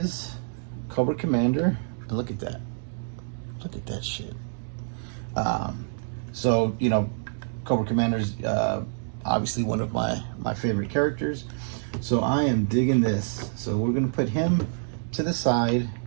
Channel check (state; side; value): silent; left; digital silence